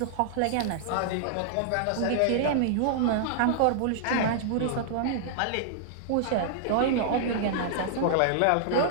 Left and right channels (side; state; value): both; different; correlation -0.01